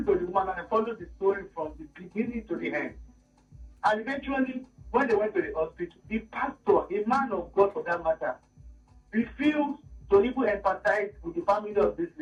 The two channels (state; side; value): identical; both; correlation 1.00